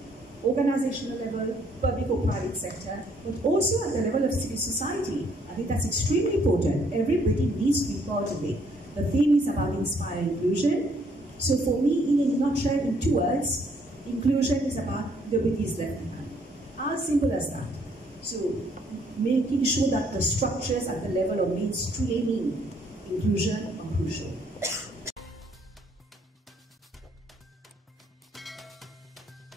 organizational level, public or private sector, but also at the level of civil society. I think that's extremely important. Everybody needs to be part of it. The theme is about inspire inclusion. So for me, in a nutshell, in 2 words, inclusion is about nobody is left behind. As simple as that. So making sure that the structures at the level of mainstreaming inclusion are crucial.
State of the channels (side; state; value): both; normal; correlation 0.66